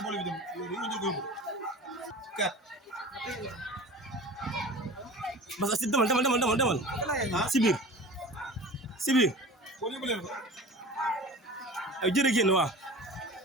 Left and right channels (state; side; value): normal; both; correlation 0.38